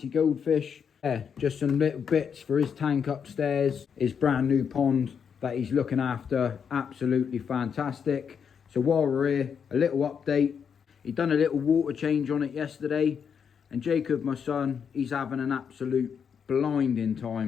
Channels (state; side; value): quieter; right; 7.1 dB